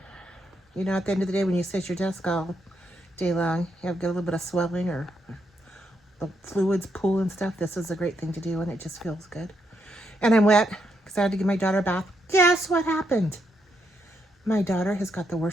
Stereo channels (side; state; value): both; normal; correlation 0.79